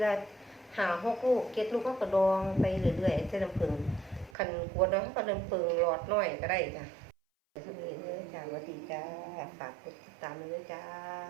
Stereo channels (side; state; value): left; drops out; at 4.4 s